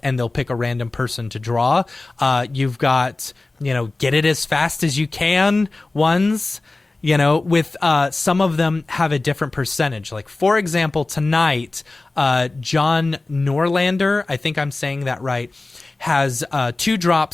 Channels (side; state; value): right; quieter; 3.2 dB